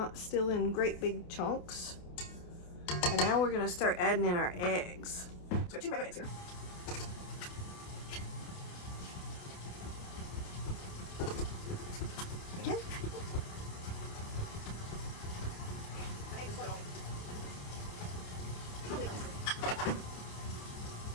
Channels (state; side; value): late; right; 28 ms